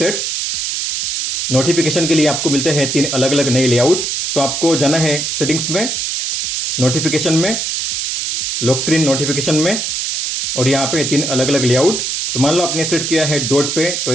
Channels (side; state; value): right; noise; hiss, 1 dB below the sound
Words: नोटिफिकेशन के लिए आपको मिलते हैं 3 अलग अलग नए लेआउट। तो आपको जाना है सेटिंग्स में, नोटिफिकेशन में, लॉक स्क्रीन नोटिफिकेशन में और यहाँ पे 3 अलग अलग लेआउट। तो मान लो आपने सेट किया है डॉट पे, तो